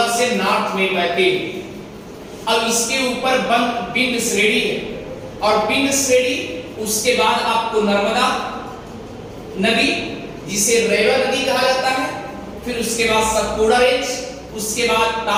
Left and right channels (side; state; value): both; identical; correlation 1.00